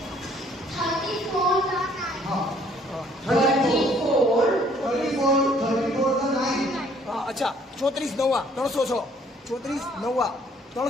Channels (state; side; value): normal; both; correlation 0.61